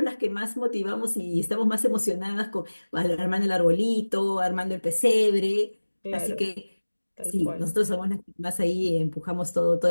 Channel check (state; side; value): inverted; both; correlation -1.00